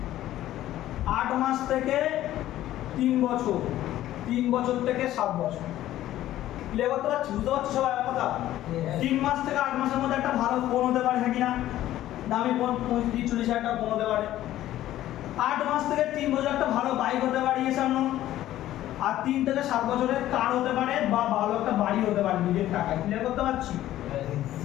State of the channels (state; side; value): quieter; right; 13.7 dB